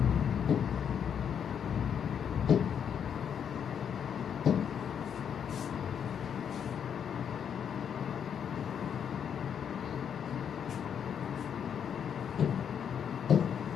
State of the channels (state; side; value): quieter; right; 8.0 dB